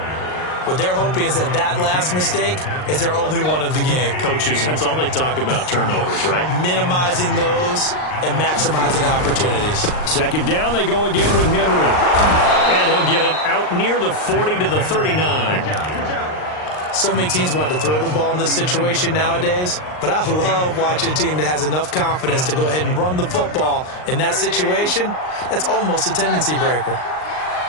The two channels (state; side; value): late; right; 39 ms